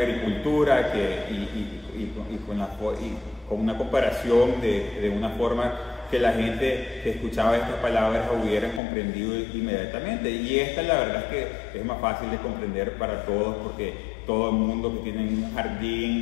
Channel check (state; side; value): drops out; right; at 8.8 s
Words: y con una comparación de una forma que la gente que escuchaba estas palabras hubiera comprendido inmediatamente. Y esta la verdad es que es más fácil de comprender para todos, porque todo el mundo que tiene un